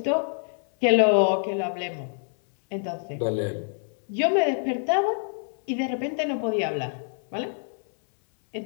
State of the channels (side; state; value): right; silent; 61 dB below the other